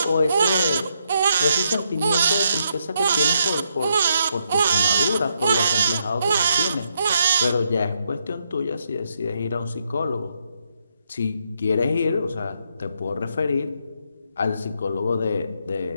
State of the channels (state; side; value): inverted; both; correlation -0.78